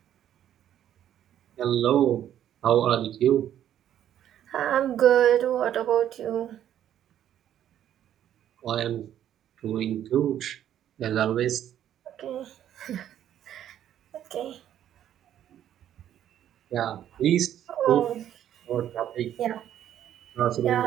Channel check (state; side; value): quieter; left; 10.9 dB